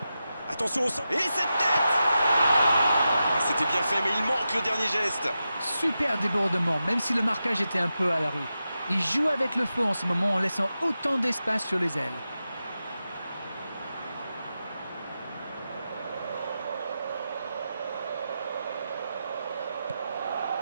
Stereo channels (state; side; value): inverted; both; correlation -0.90